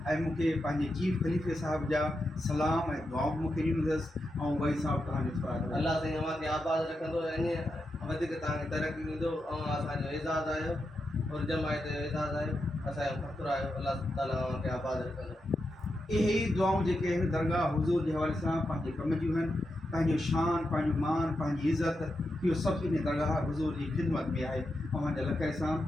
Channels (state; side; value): normal; both; correlation 0.87